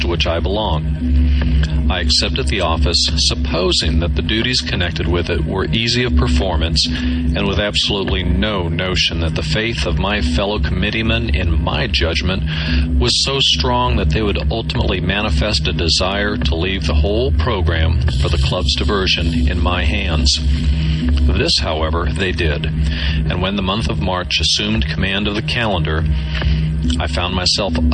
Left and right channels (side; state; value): both; identical; correlation 1.00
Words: which I belong. I accepted the office supposing that the duties connected with it were easy of performance, and with absolutely no notion that the faith of my fellow committeemen in my judgment was so strong that they would ultimately manifest a desire to leave the whole program for the club's diversion in my hands. This, however, they did, and when the month of March assumed command of the calendar, I found myself